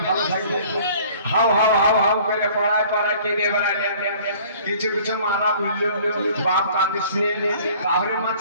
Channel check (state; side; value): inverted; both; correlation -0.52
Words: ভালো থাকবে? হাউ হাউ হাউ হাউ করে পড়ায় পড়ায় কেঁদে বেড়ালে। কিছু কিছু মারা বললো বাপ কাঁদিস নে, তাহলে মা